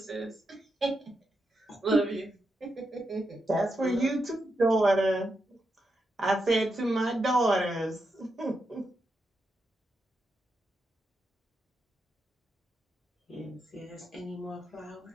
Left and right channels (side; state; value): both; normal; correlation 0.85